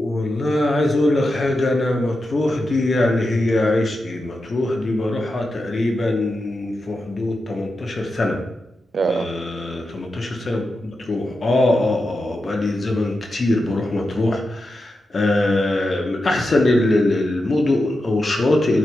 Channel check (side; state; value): both; normal; correlation 0.89